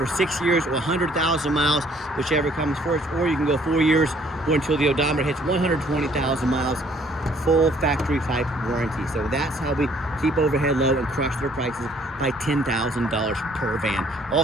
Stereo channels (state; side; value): normal; both; correlation 0.61